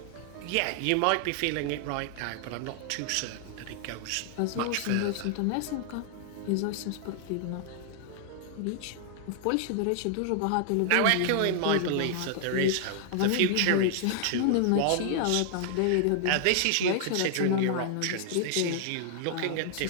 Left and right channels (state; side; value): different; both; correlation 0.00